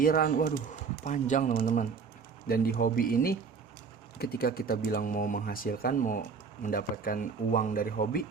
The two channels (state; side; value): quieter; left; 5.4 dB